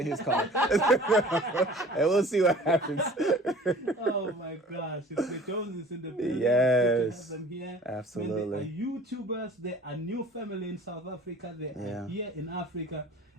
his car, and we'll see what happens. Oh my gosh, it's the Joneses in the building. Yes. It's good to have them here. Absolutely. When they are YouTubers, they are new family in South Africa. They are here in Africa.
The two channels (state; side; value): normal; both; correlation 0.47